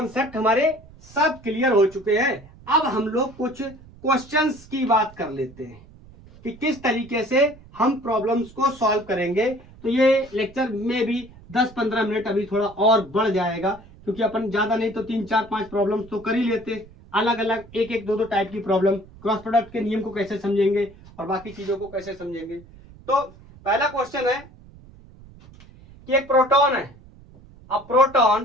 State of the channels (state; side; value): noise; right; rumble, 22 dB below the sound